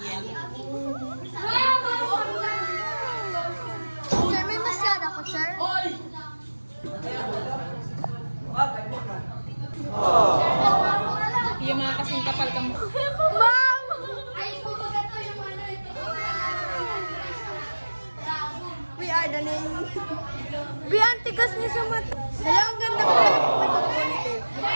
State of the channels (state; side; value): inverted; both; correlation -1.00